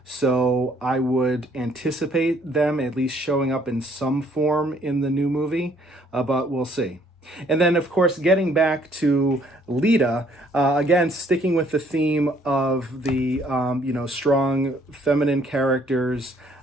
So I would anticipate them at least showing up in some form in the new movie, but we'll see. And then, of course, getting back to Lita, again, sticking with the theme of the, strong feminine characters.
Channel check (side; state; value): both; normal; correlation 0.63